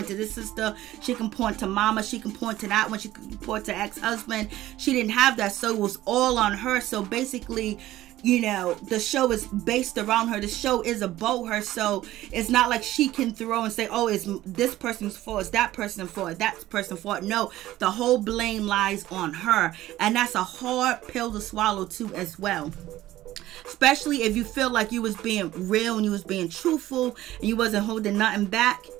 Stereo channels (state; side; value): quieter; left; 15.1 dB